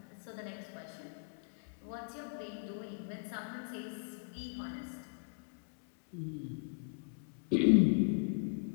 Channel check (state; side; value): silent; right; digital silence